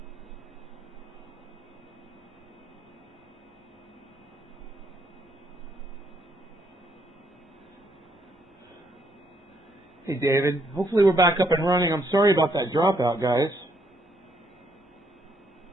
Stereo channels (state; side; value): normal; both; correlation 0.72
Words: Hey, David. Hopefully we're back up and running. I'm sorry about that dropout, guys.